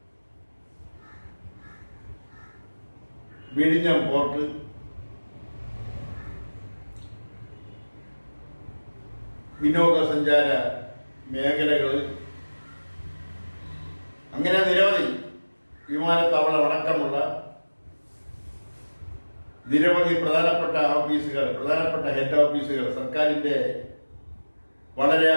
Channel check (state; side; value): inverted; both; correlation -1.00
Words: വിഴിഞ്ഞം പോർട്ട്, വിനോദസഞ്ചാര മേഖലകൾ, അങ്ങനെ നിരവധി വിമാനത്താവളം അടക്കമുള്ള നിരവധി പ്രധാനപ്പെട്ട ഹെഡ് ഓഫീസുകൾ, സർക്കാരിന്റെ വളരെ